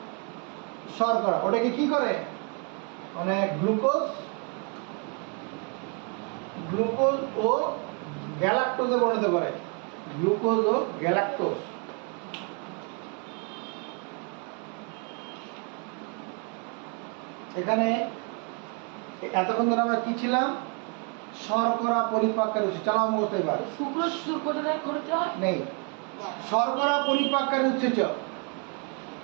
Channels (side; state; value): left; quieter; 35.9 dB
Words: শর্করা। ওটাকে কি করে? মানে গ্লুকোজ ও গ্যালাক্টোজে পরিণত করে। গ্লুকোজ ও গ্যালাক্টোজ। এখানে এতক্ষণ ধরে আমরা কি ছিলাম? শর্করা পরিপাককারী উৎসেচক। চালাও মুখস্থ এবার। সুক্রোজ কোথা থেকে খরিত হয়? নেই। শর্করা পরিপাককারী উৎসেচক